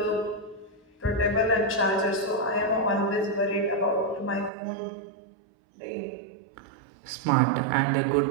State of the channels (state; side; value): drops out; left; at 4.5 s